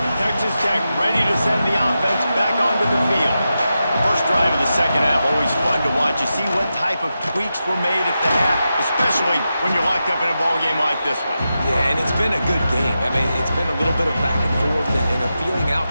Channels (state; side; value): inverted; both; correlation -0.90